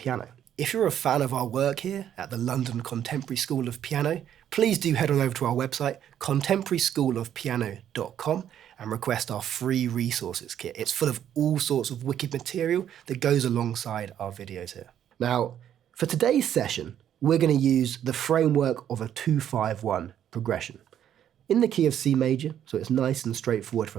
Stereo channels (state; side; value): quieter; left; 10.1 dB